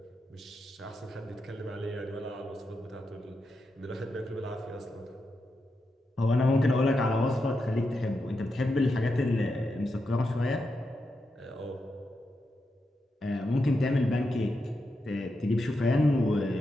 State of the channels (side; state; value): both; normal; correlation 0.86